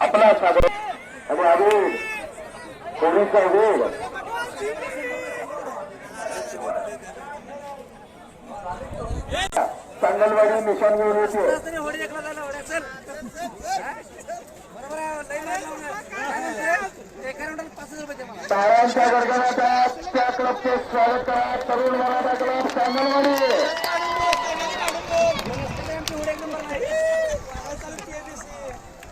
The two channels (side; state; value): both; identical; correlation 1.00